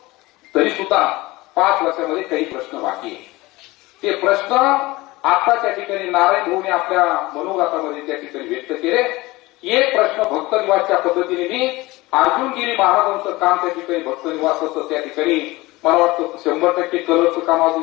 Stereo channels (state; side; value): quieter; right; 20.7 dB